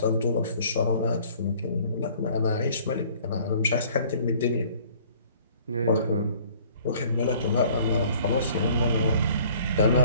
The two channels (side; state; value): both; inverted; correlation -0.55